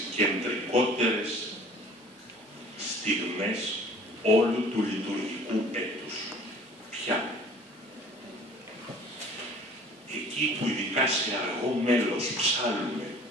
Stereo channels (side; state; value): both; normal; correlation 0.49